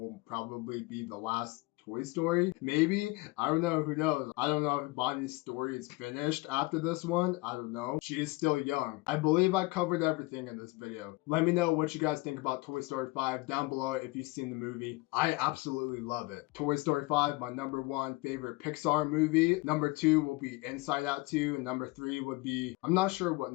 probably be the last Toy Story. Maybe. I don't know. Who knows? I don't know if Bonnie's story is finished after this one. I don't know. She is still young. I believe I covered everything in this video. Let me know what you guys think about Toy Story 5 down below if you've seen the movie. I absolutely love it. Toy Story 5, my number 1 favorite Pixar movie. Number 2 will be Inside Out 2, and number 3 would be, I'm not sure what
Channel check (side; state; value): right; quieter; 22.7 dB